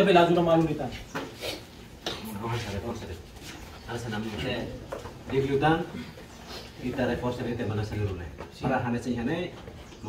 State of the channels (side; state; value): both; identical; correlation 1.00